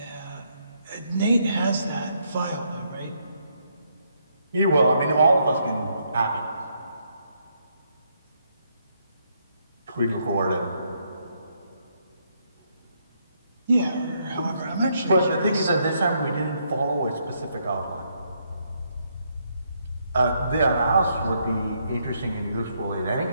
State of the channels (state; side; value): inverted; both; correlation -0.74